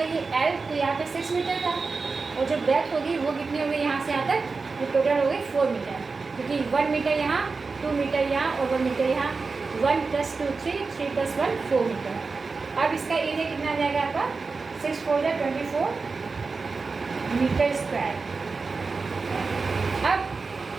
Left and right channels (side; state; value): left; quieter; 4.3 dB